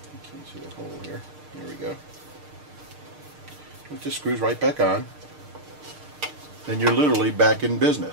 You can see the hole here. There we go. It just screws right back on. Then you're literally back in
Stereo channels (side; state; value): left; late; 6.6 ms